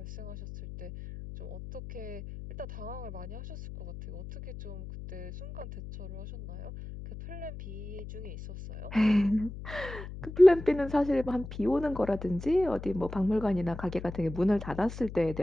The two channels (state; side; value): noise; left; hum, 11 dB below the sound